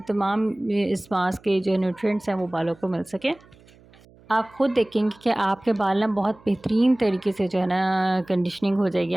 तमाम इस मास्क के जो न्यूट्रिएंट्स हैं वो बालों को मिल सके। आप खुद देखेंगे कि आपके बाल ना बहुत बेहतरीन तरीके से जो है ना कंडीशनिंग हो जाएगी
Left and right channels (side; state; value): right; noise; hum, 27 dB below the sound